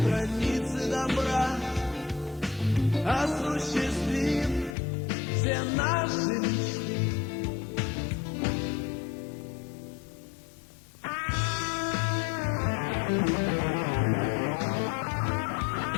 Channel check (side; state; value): right; drops out; at 4.8 s